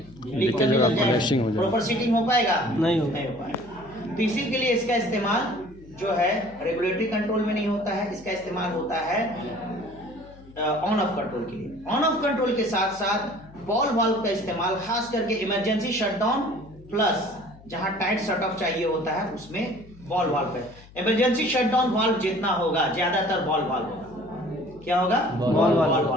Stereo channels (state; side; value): noise; left; hum, 22 dB below the sound